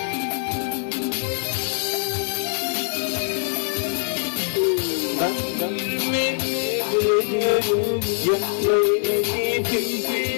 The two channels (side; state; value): right; silent; digital silence